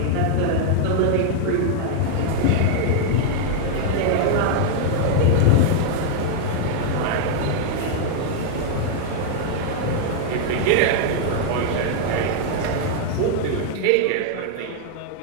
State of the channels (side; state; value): both; different; correlation 0.00